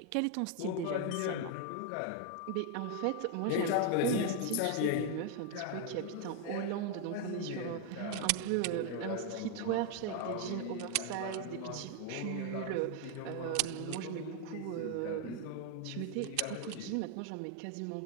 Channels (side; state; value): both; different; correlation 0.01